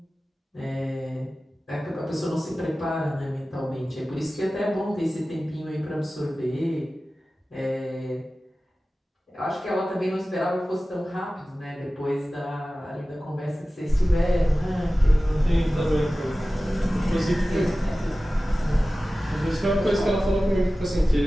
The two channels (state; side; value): normal; both; correlation 0.96